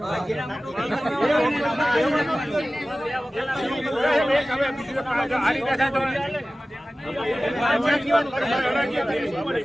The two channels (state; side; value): normal; both; correlation 0.96